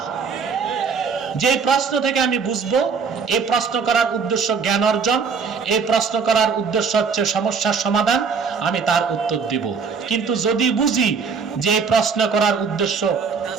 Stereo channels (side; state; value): left; quieter; 5.6 dB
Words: যে প্রশ্ন থেকে আমি বুঝবো এই প্রশ্ন করার উদ্দেশ্য জ্ঞান অর্জন, এই প্রশ্ন করার উদ্দেশ্য হচ্ছে সমস্যার সমাধান, আমি তার উত্তর দিব। কিন্তু যদি বুঝি যে এই প্রশ্ন করার উদ্দেশ্য